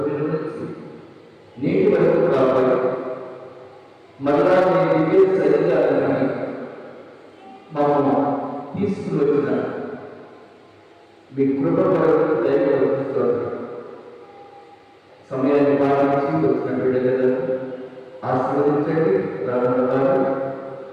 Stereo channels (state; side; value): identical; both; correlation 1.00